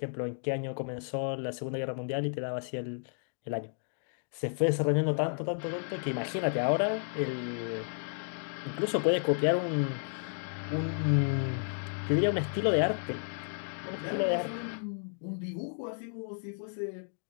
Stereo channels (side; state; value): right; silent; digital silence